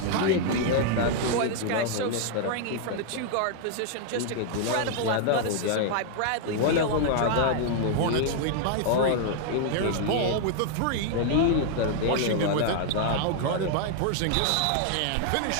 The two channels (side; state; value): both; different; correlation 0.00